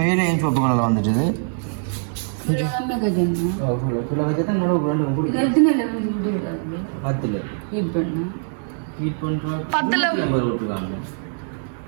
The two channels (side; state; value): left; silent; 64 dB below the other